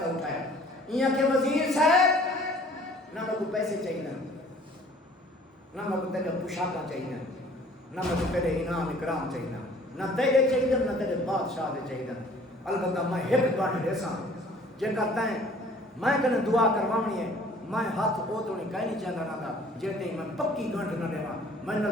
اٹھایا ایاں کہ وزیر صاحب نہ کو پیسے چاہیے نہ کو تیرے پوشاکاں چاہیے نہ کو تیرے انعام اکرام چاہیے نہ تیرے چاہیے نہ تیرے بادشاہ دے چاہیے. البتہ میں ہک باٹھ دیساں جے کرتا ہے میں کنے دعا کروانی ہے میں ہاتھ او تو نہیں کہیں نہیں چاہتا نہ تھا جیتے میں پکی گھنٹ نہ دیوا میں نے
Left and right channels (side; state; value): both; normal; correlation 0.53